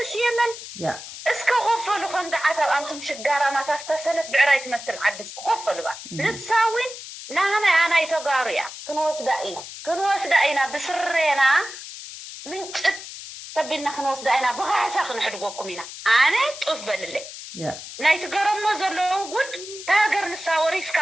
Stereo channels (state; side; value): noise; left; hiss, 12 dB below the sound